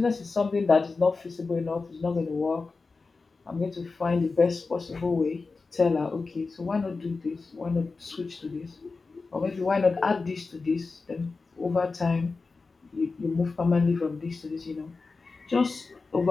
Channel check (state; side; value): quieter; right; 4.1 dB